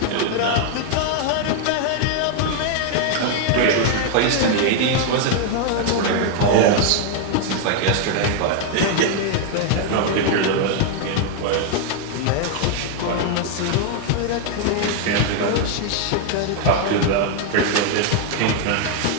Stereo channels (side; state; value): both; different; correlation 0.00